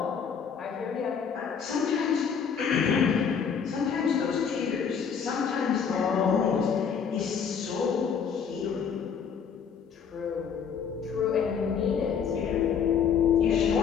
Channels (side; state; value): right; quieter; 6.9 dB